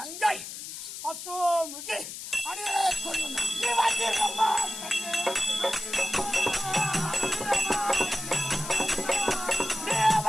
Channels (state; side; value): noise; left; hiss, 9 dB below the sound